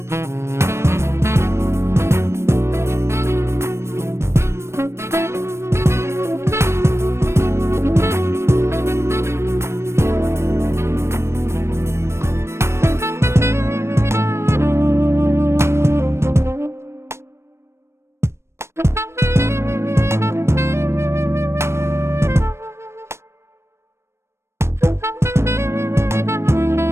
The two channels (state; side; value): late; left; 0.13 ms